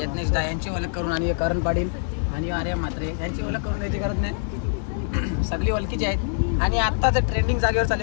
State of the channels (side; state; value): right; silent; digital silence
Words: दा यांची ओळख करून आणि करण पाटील आणि आर्यन म्हात्रे यांची ओळख करून द्यायची गरज नाही, सगळी ओळखीची आहेत. आणि आता जर ट्रेंडिंग जागेवर